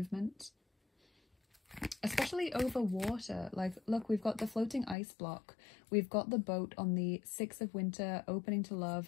Especially over water. Like, look, we've got the floating ice block. We've got the boat on the 6 of Winter, opening to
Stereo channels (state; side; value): drops out; right; at 5.0 s